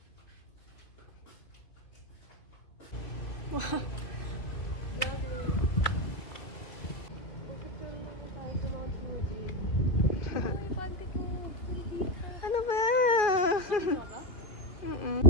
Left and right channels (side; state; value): right; late; 2.5 ms